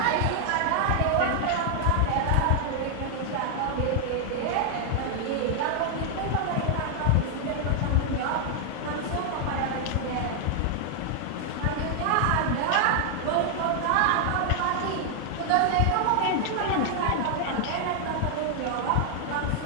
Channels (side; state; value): both; different; correlation 0.00